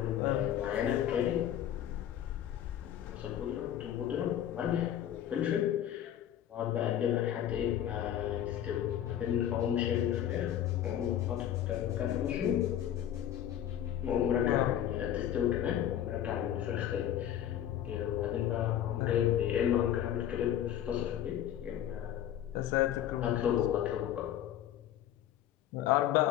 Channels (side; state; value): right; quieter; 11.0 dB